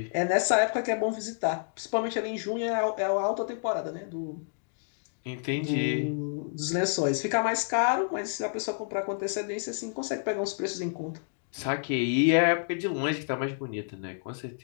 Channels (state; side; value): silent; right; digital silence